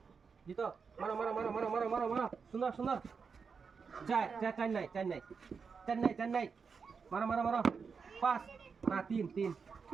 জিতো। মারো সুন্দর। 4 নাই। মারো। 5 না 3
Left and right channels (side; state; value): left; quieter; 5.6 dB